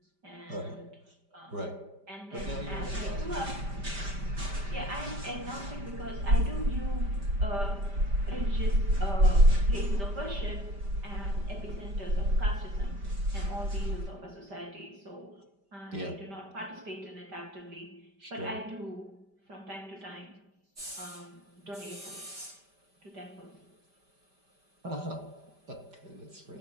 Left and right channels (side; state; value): left; late; 5.1 ms